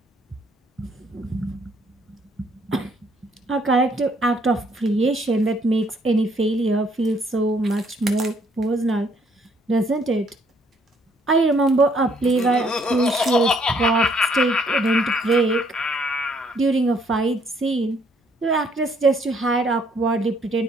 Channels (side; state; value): both; normal; correlation 0.66